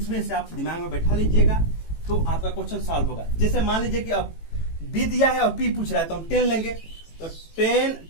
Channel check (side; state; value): right; late; 18 ms